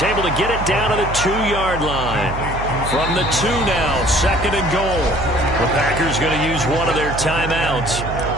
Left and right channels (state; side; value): noise; right; hum, 7 dB below the sound